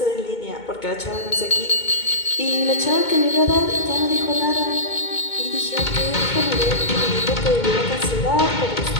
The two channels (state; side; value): late; right; 2.2 ms